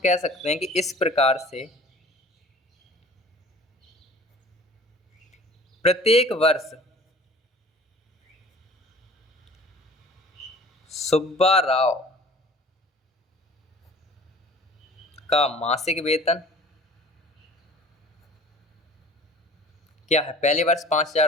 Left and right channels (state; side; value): normal; both; correlation 0.47